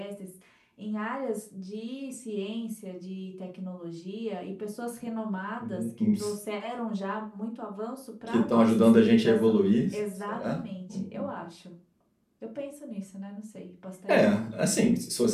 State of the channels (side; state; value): both; identical; correlation 1.00